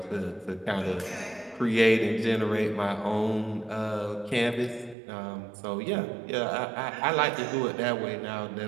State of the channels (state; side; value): drops out; left; at 5.0 s